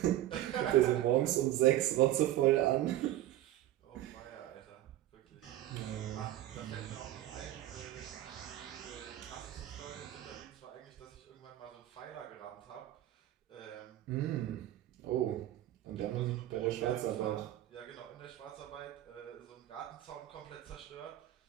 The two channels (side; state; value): left; quieter; 13.8 dB